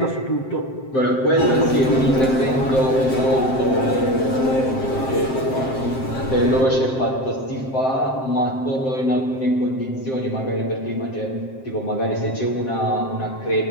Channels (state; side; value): late; right; 7.6 ms